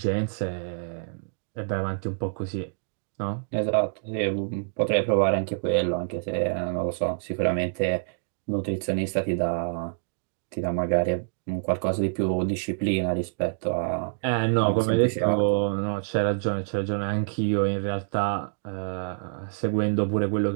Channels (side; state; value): left; silent; digital silence